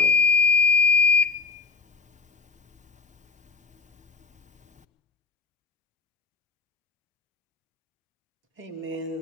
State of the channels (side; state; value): right; quieter; 4.3 dB